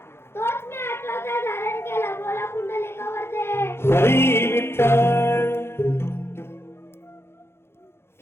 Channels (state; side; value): late; right; 0.12 ms